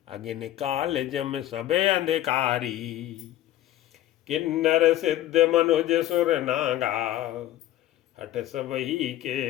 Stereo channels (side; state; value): right; quieter; 13.7 dB